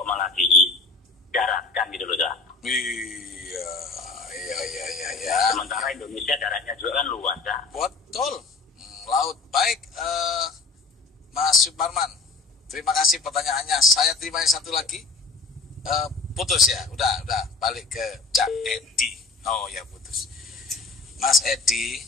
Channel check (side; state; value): right; quieter; 4.1 dB